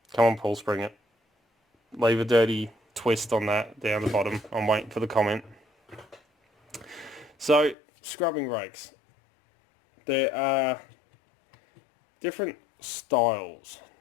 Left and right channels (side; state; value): right; drops out; at 7.8 s